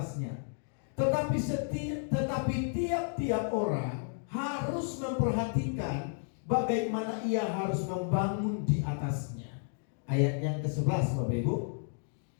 Tetapi tiap-tiap orang harus memperhatikan bagaimana ia harus membangun di atasnya. Ayat yang ke-11 Bapak Ibu.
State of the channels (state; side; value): silent; right; 56 dB below the other